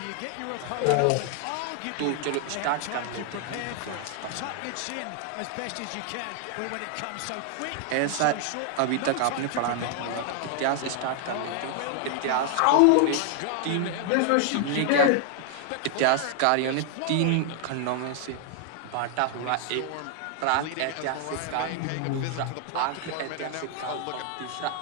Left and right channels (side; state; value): both; different; correlation 0.00